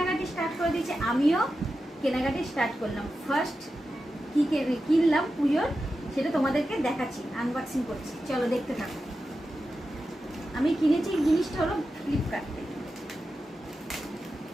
স্টার্ট করে দিয়েছে। আমিও কেনাকাটি স্টার্ট করলাম। ফার্স্ট কি কিনলাম পুজোর সেটা তোমাদেরকে দেখাচ্ছি, আনবক্সিং করছি। চলো দেখতে থাকো। আমি কিনেছি জিনিসটা হলো ফ্লিপকার্ট থেকে।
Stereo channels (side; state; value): both; normal; correlation 0.91